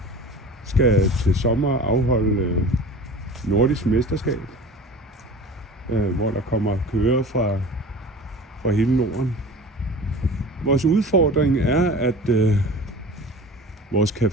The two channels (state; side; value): normal; both; correlation 0.38